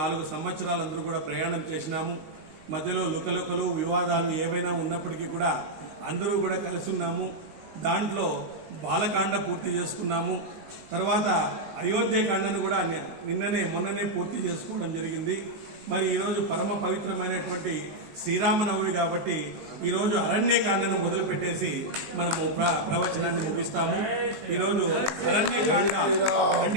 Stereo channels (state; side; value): late; left; 19 ms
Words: సంవత్సరాలు అందరూ కూడా ప్రయాణం చేసినాము. మధ్యలో లుకలుకలు వివాదాలు ఏవైనా ఉన్నప్పటికీ కూడా అందరూ కూడా కలిసి ఉన్నాము. దాంట్లో బాలకాండ పూర్తి చేసుకున్నాము. తర్వాత అయోధ్యకాండను కూడా మొన్ననే పూర్తి చేసుకోవడం జరిగింది. మరి ఈరోజు పరమ పవిత్రమైనటువంటి శ్రీరామనవమి కాబట్టి ఈరోజు అరణ్యకాండను మొదలుపెట్టేసి మనము ప్రవచనాన్ని ముగిస్తాము. ఈరోజు అరణ్యకాండ